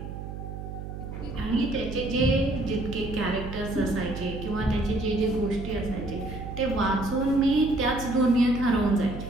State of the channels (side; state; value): right; noise; hum, 8 dB below the sound